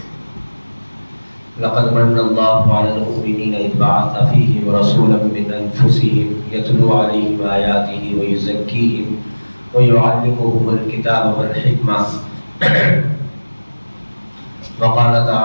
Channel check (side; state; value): both; inverted; correlation -1.00